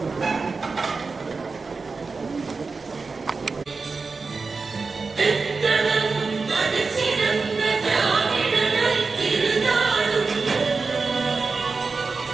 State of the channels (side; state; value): left; quieter; 4.3 dB